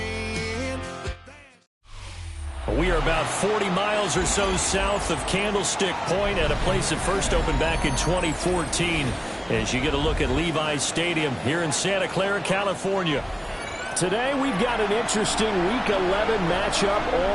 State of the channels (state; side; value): identical; both; correlation 1.00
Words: in. We are about 40 miles or so south of Candlestick Point at a place that first opened back in 2014 as you get a look at Levi's Stadium here in Santa Clara, California. Today, we've got an interesting Week 11 matchup